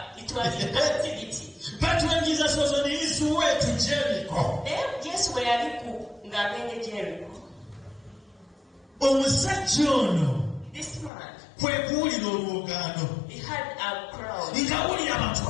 was in captivity. But when Jesus was on his way to Jericho, Yesu bwe yali ng'agenda Jericho, omusajja ono this man, kwe kuwulira olwogaano, he had a crowd. ng'awulira abantu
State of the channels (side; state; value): right; drops out; at 11.1 s